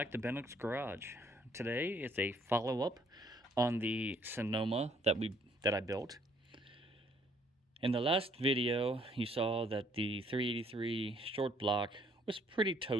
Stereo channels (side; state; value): both; normal; correlation 0.63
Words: to Bennock's Garage. Today it's a follow-up on the Sonoma that I built. In the last video, you saw that the 383 short block was pretty